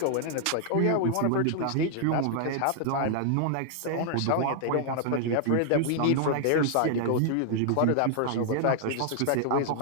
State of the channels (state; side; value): different; both; correlation -0.01